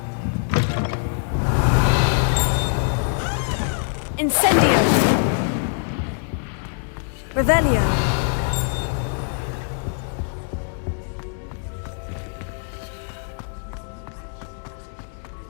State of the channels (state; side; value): silent; right; 63 dB below the other